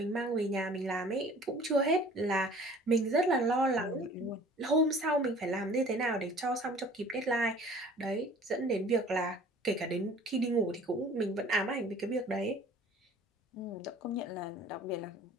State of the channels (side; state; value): both; normal; correlation 0.49